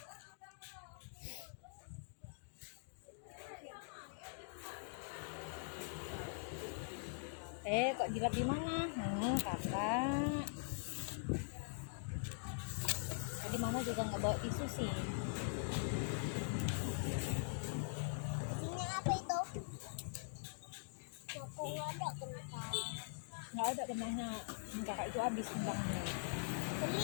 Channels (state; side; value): silent; right; digital silence